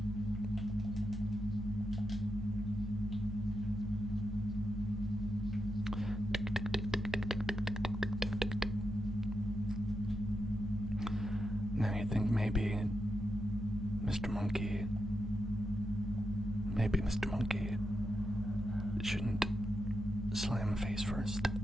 Now you think maybe Mr. Monkey shouldn't slam face first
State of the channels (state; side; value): normal; both; correlation 0.86